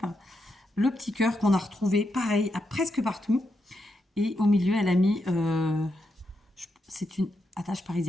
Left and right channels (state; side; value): normal; both; correlation 0.83